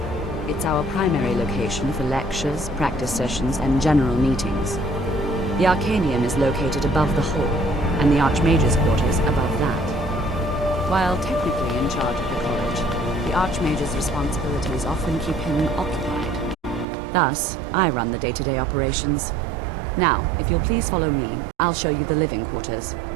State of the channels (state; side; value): drops out; left; at 16.9 s